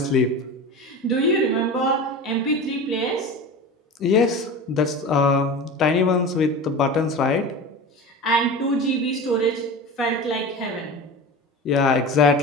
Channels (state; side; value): normal; both; correlation 0.31